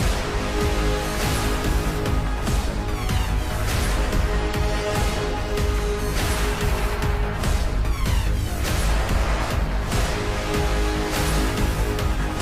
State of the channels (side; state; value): both; identical; correlation 1.00